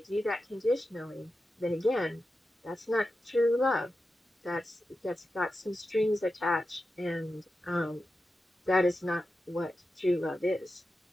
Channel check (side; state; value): both; normal; correlation 0.91